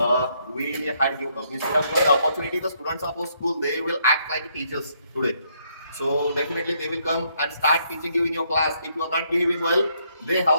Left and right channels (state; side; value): inverted; both; correlation -0.71